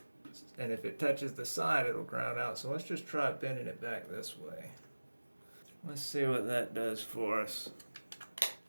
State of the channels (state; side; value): inverted; both; correlation -1.00